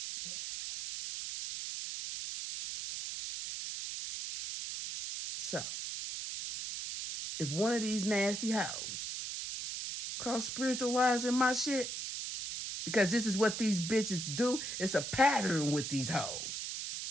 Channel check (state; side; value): noise; right; hiss, 5 dB below the sound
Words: Yeah. So, if one of these nasty hoes cross spiritual lines in my shit, because this is what these bitches do, it's a pattern with these hoes.